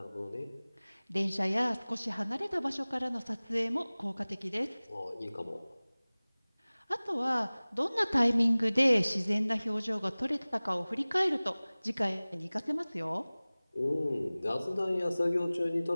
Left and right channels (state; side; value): inverted; both; correlation -0.99